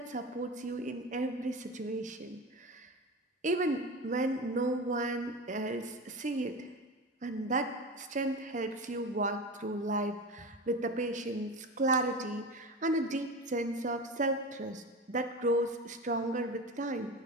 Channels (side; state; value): both; normal; correlation 0.27